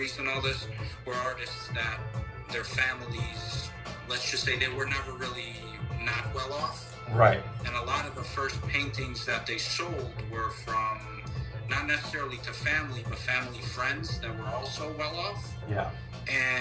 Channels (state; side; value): identical; both; correlation 1.00